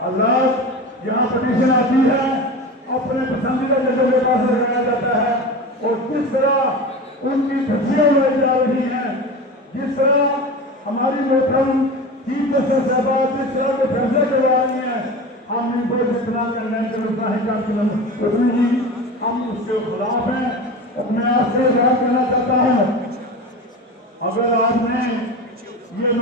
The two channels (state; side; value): normal; both; correlation 0.30